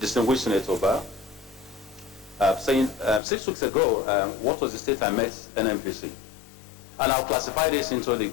Senator Ba, saying 6 weeks ago, what was the state I met NNPC? And I'll classify this into the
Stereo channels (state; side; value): drops out; right; at 3.2 s